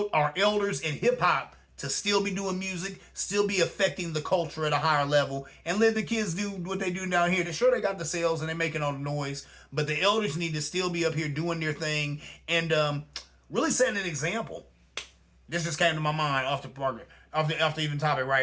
elders in hip hop to still be doing music, still be affecting the culture at a higher level, and let the kids do what they do down here. They're sure they got the sales and they're making all the noise, but the elders need to still be up here doing their thing and really setting an example. This just came to my mind off the even topic,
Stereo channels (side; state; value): both; identical; correlation 1.00